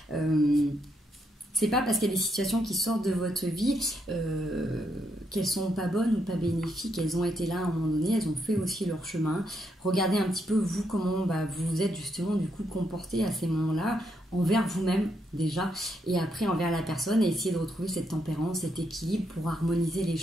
C'est pas parce qu'il y a des situations qui sortent de votre vie qu'elles sont pas bonnes ou pas bénéfiques. Elles ont été là à un moment donné, elles ont fait aussi leur chemin. Regardez un petit peu vous comment vous vous êtes justement du coup comporté à ces moments-là, envers vous-même déjà, et après envers la personne, et essayer de retrouver cette tempérance, cet équilibre pour harmoniser les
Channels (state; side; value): normal; both; correlation 0.78